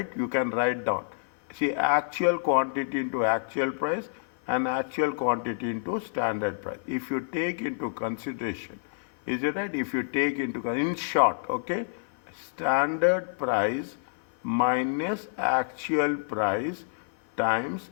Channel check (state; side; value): silent; right; 59 dB below the other